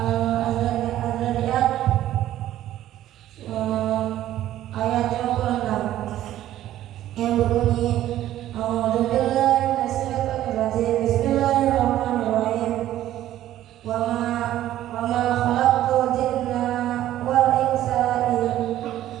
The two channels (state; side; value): quieter; left; 13.1 dB